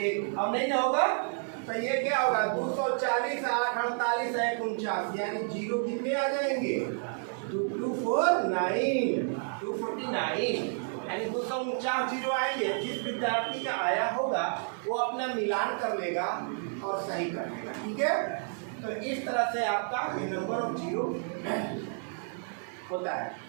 अब नहीं ना होगा तो ये क्या होगा 240 8 48 है 49, यानी 0 कितने आ जाएंगे 249, यानी 249 0 आएंगे। जिस विद्यार्थी का आया होगा वो अपना मिलान कर लेगा और सही कर लेगा। ठीक है, तो इस तरह से आपका ये नंबर ऑफ 0 होता है।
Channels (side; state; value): left; silent; 57 dB below the other